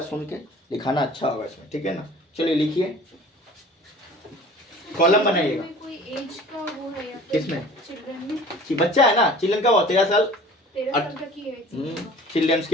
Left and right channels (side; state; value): both; normal; correlation 0.45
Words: सुन के लिखाना अच्छा होगा इसमें, ठीक है ना। चलिए लिखिए, कॉलम बनाइएगा, कोई एज का वो है या किसमें, चिल्ड्रन में, कि बच्चा है ना, चिल्ड्रन का वो 13 साल, 13 साल तक की एज, चिल्ड्रंस